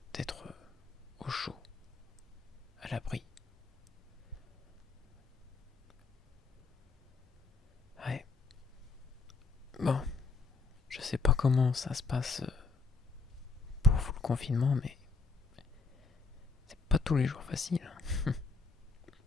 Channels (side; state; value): right; quieter; 4.2 dB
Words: d'être au chaud, à l'abri. Ouais. Bon, je sais pas comment ça se passe pour vous le confinement, mais c'est pas tous les jours facile.